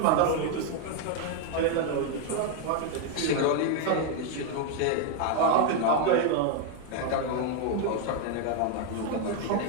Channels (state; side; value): different; both; correlation 0.00